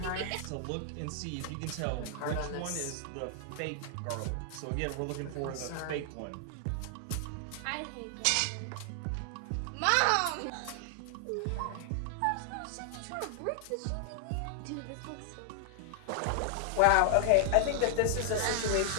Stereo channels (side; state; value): both; different; correlation 0.00